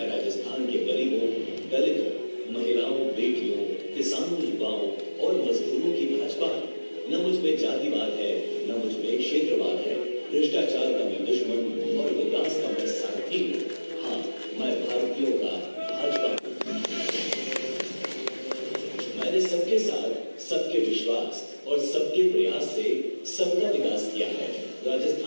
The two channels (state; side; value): inverted; both; correlation -1.00